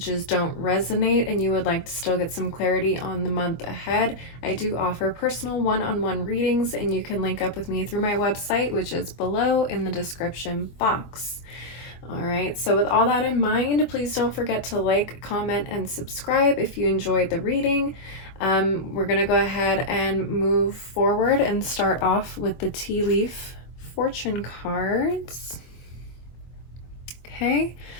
don't resonate and you would like to still get some clarity on the month ahead, I do offer personal one-on-one readings, and you can link up with me through my website, which is below in the description box. All right, so with all that in mind, please don't forget to like, comment, and subscribe if you enjoyed the reading. We're going to go ahead and move forward and start off with the tea leaf fortune cards. Okay,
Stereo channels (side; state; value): right; late; 24 ms